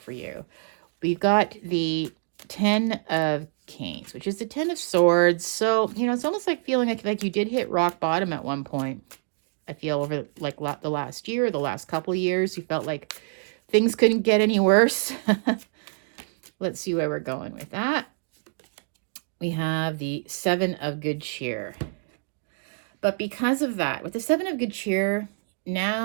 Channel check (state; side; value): silent; left; 61 dB below the other